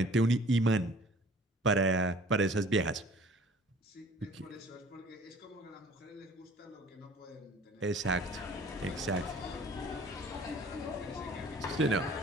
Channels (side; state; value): both; normal; correlation 0.51